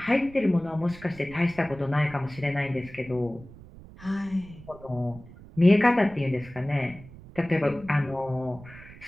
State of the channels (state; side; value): noise; right; rumble, 19 dB below the sound